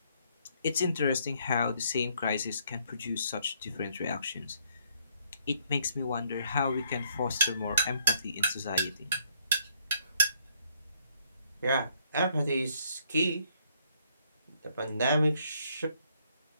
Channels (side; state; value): both; inverted; correlation -0.69